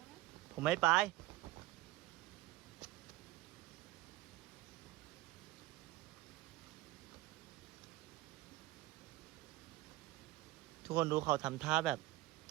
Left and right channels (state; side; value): quieter; left; 17.4 dB